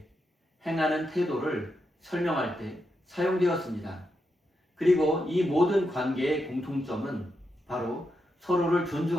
행하는 태도를 설명할 때 사용되었습니다. 그리고 이 모든 관계의 공통점은 바로 서로를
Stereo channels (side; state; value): both; normal; correlation 0.85